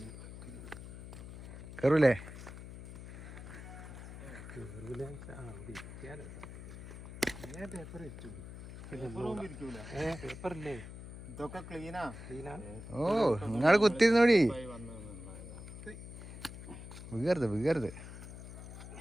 കയറൂലേ? ഓ, നിങ്ങള് കുത്തിരുന്നോടി, വീകരുത് വീകരുത്.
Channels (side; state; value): left; noise; hum, 12 dB below the sound